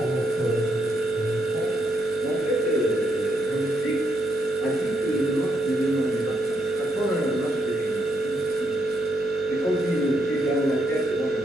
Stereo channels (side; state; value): both; normal; correlation 0.77